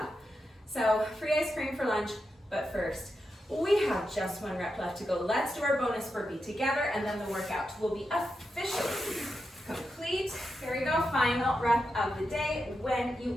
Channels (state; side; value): normal; both; correlation 0.87